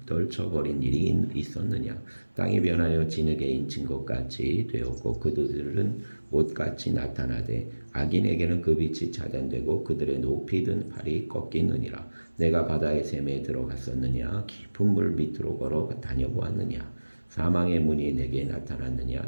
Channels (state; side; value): inverted; both; correlation -1.00